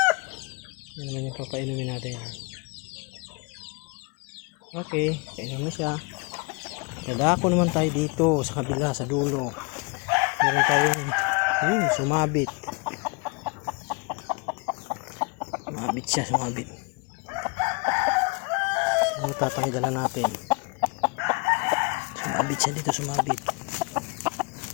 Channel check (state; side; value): quieter; right; 29.0 dB